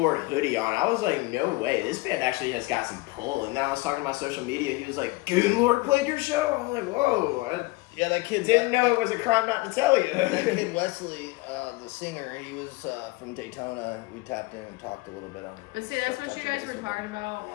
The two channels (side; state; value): right; quieter; 22.3 dB